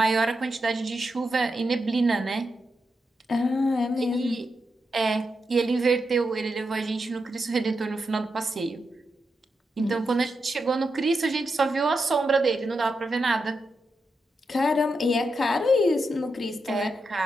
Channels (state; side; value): normal; both; correlation 0.86